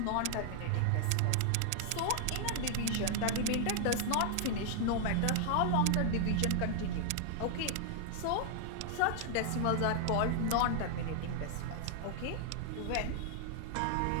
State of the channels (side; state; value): both; different; correlation 0.00